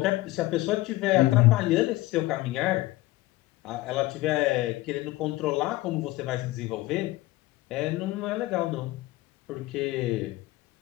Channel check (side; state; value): right; quieter; 18.6 dB